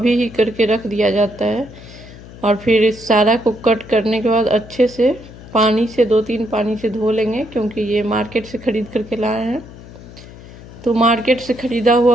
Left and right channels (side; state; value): left; noise; hum, 17 dB below the sound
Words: ही करके रख दिया जाता है। और फिर इस सारा को कट करने के बाद अच्छे से पानी से 2-3 पानी से धो लेंगे, क्योंकि ये मार्केट से ख़रीद करके लाए हैं। तो मार्केट से ख़रीदा